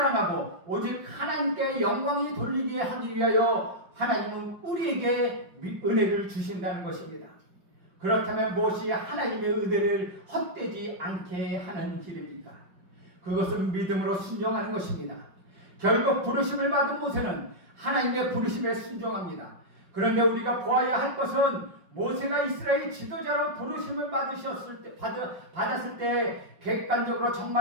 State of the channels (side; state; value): left; late; 5.4 ms